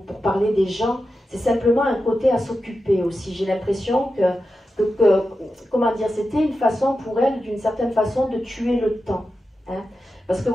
parler des gens, c'est simplement un côté à s'occuper aussi. J'ai l'impression que comment dire, c'était une façon pour elle, d'une certaine façon, de tuer le temps. Hein. Parce que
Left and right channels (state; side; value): normal; both; correlation 0.91